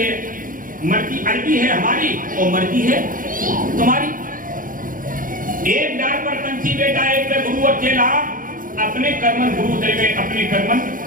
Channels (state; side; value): late; left; 0.40 ms